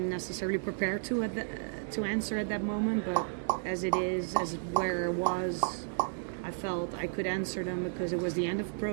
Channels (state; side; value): silent; left; digital silence